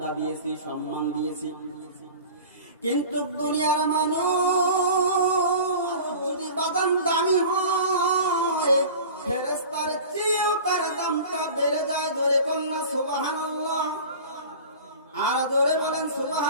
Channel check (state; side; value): inverted; both; correlation -0.38